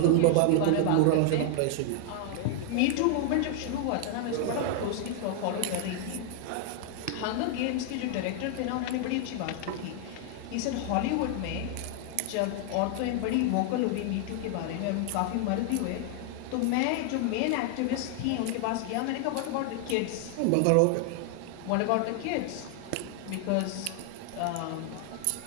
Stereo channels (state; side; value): different; both; correlation 0.00